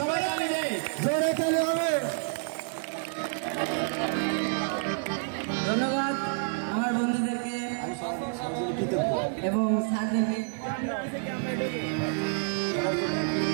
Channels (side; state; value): left; silent; 59 dB below the other